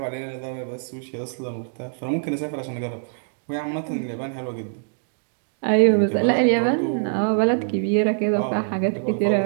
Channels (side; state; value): left; silent; digital silence